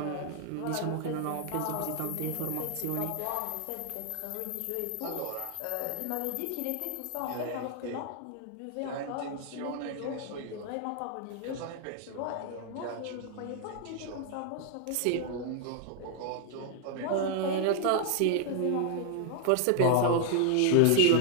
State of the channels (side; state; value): both; different; correlation 0.00